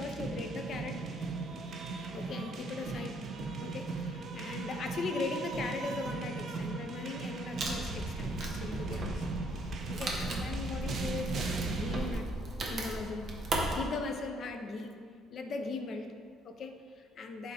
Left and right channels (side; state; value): both; normal; correlation 0.66